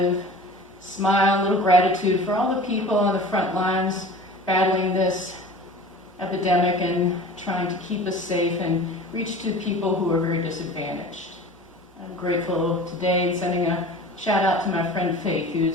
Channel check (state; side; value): normal; both; correlation 0.40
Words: Smile, a little gratitude for all the people on the front lines battling this epidemic and trying to keep us safe and reach to people who are very disadvantaged. I'm grateful today sending a shout out to my friend Faith,